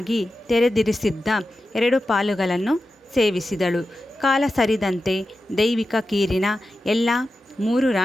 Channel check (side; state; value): both; normal; correlation 0.92